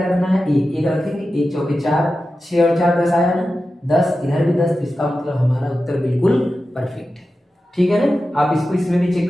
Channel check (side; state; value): both; normal; correlation 0.93